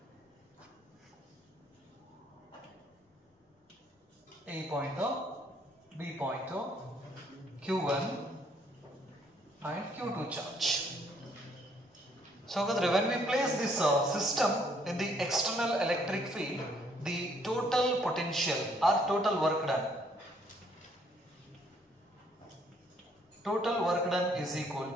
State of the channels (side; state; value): both; normal; correlation 0.66